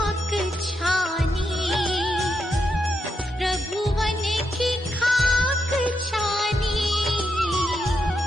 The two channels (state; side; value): normal; both; correlation 0.82